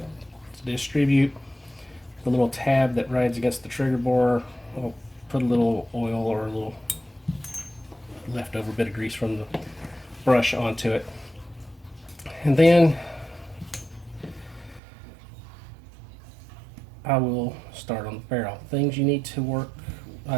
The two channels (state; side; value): drops out; left; at 14.8 s